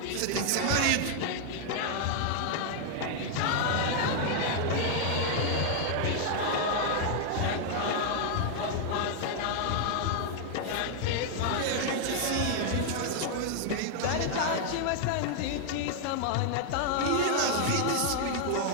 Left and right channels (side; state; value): both; different; correlation 0.00